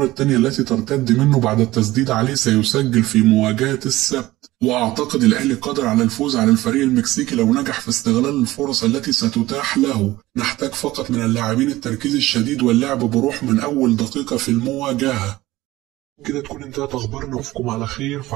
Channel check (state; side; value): quieter; left; 17.5 dB